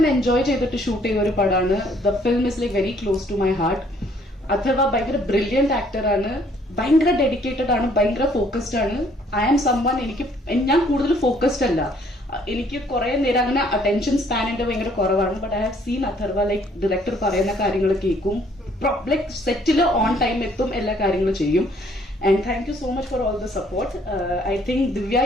എൻജോയ് ചെയ്തിട്ട് ഷൂട്ട് ചെയ്ത ഒരു പടമാണ്. The film is like very close to my heart. Atharva ഭയങ്കര ബ്രില്യന്റ് ആക്ടറാണ്, ഭയങ്കര ഡെഡിക്കേറ്റഡ് ആണ്, ഭയങ്കര ഫോക്കസ്ഡ് ആണ്. ഐ ആം സംവൺ, ഞാൻ കൂടുതൽ ഫോക്കസ്ഡ് അല്ല. എനിക്ക് കുറെ നേരം അങ്ങനെ അറ്റൻഷൻ സ്പാൻ എന്റെ ഭയങ്കര കുറവാണ്. But I have seen Atharva like director പറയുന്ന കാര്യങ്ങൾ കേൾക്കും, ലൈക്ക് സെറ്റില് ഓൺ ടൈം എത്തും, എല്ലാ കാര്യങ്ങളും ചെയ്യും. And thank you so much for all the support. I think Divya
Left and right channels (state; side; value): normal; both; correlation 0.63